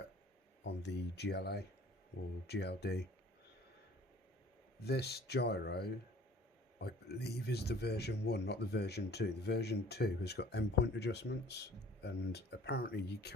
on the GLA or GLD. This gyro, I believe, is the version 1, not the version 2. The version 2 has got endpoint adjustments, and apparently you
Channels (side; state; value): both; normal; correlation 0.51